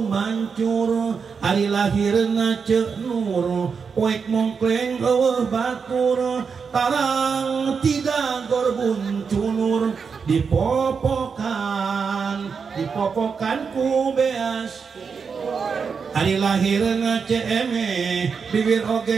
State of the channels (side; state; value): left; quieter; 5.8 dB